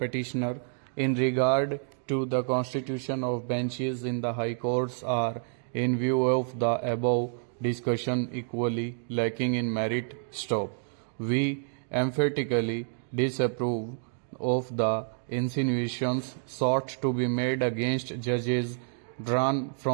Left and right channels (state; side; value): silent; left; digital silence